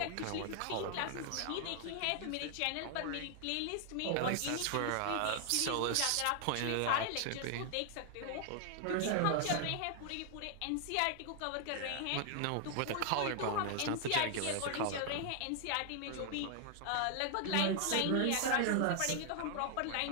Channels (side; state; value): both; different; correlation 0.00